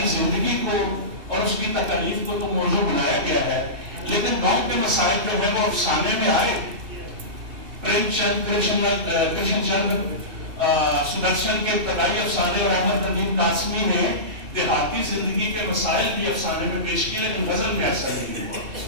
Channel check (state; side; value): late; left; 2.6 ms